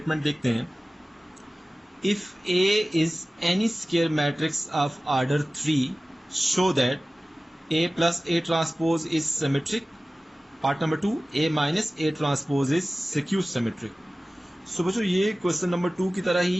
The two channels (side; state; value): both; normal; correlation 0.97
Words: देखते हैं, if A is any square matrix of order 3 show that A + A transpose is symmetric. Part number 2, A - A transpose is skew symmetric. So बच्चों ये क्वेश्चन नंबर 2 की तरह